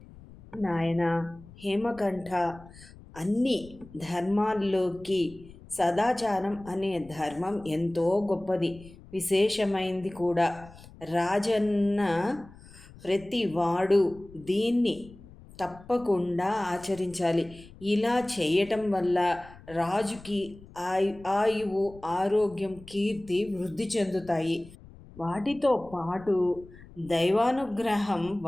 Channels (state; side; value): noise; left; rumble, 20 dB below the sound